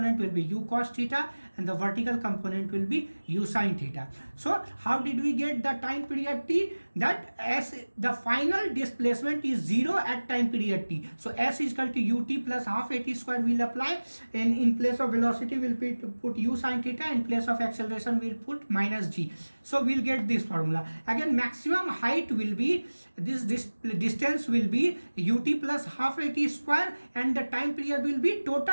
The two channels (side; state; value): both; inverted; correlation -1.00